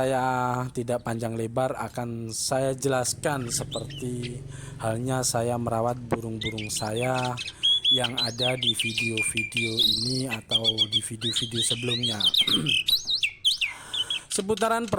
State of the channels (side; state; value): both; identical; correlation 1.00